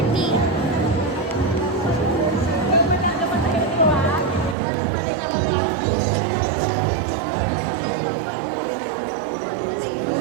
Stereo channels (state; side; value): drops out; left; at 4.5 s